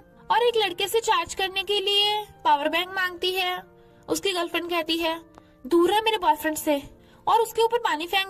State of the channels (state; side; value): identical; both; correlation 1.00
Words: और एक लड़के से चार्ज करने के लिए पावर बैंक मांगती है। उसकी गर्लफ्रेंड कहती है, दूर है मेरे बॉयफ्रेंड से, और उसके ऊपर पानी फेंक